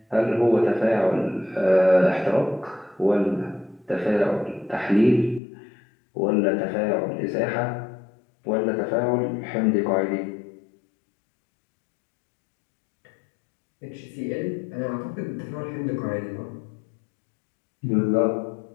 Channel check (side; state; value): right; drops out; at 5.4 s